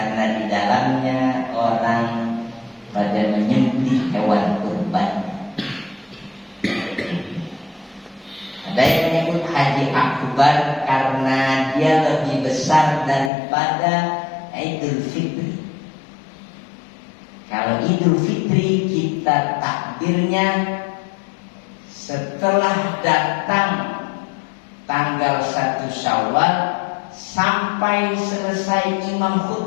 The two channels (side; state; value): right; drops out; at 13.3 s